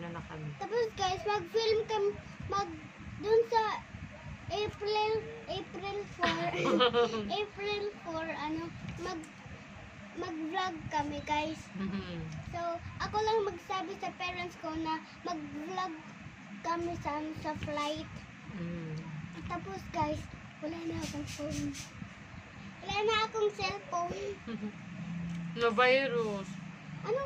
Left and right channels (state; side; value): identical; both; correlation 1.00